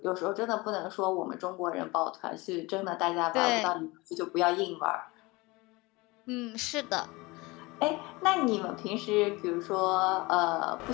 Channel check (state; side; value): quieter; right; 23.4 dB